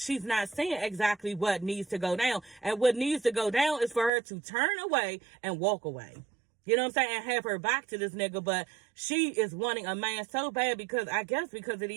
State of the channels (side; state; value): left; drops out; at 4.1 s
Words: not seeing exactly what needs to go down. And what needs to go down is for her to turn away and walk away. You know what I'm saying? And have her back to this nigga. But she is wanting a man so bad because of